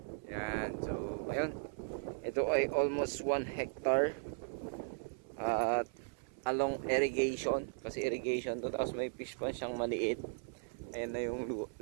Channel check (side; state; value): left; silent; 53 dB below the other